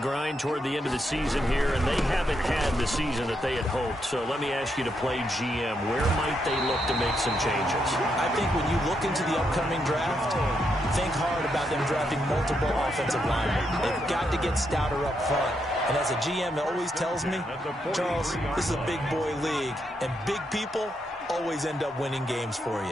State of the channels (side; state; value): both; normal; correlation 0.80